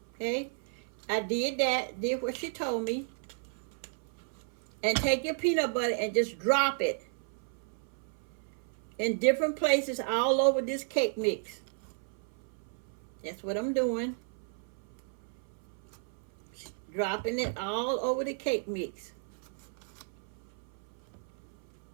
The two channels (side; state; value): left; silent; 55 dB below the other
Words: Okay, I did that, did what she told me. And take your peanut butter and just drop it in different places all over this cake mix. That's what I'm doing. Dropping it all over the cake mix.